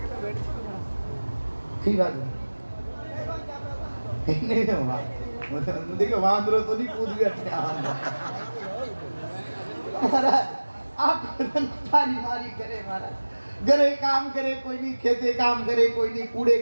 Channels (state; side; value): inverted; both; correlation -1.00